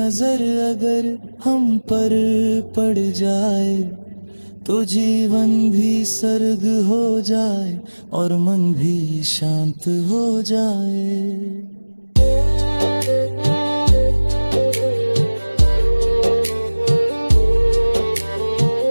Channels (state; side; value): inverted; both; correlation -1.00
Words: अगर हम पर पड़ जाए तो जीवन भी सर्ग हो जाए और मन भी शांत हो जाए।